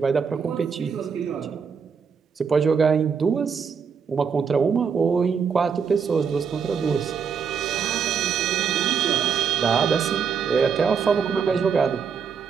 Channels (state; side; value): quieter; left; 6.4 dB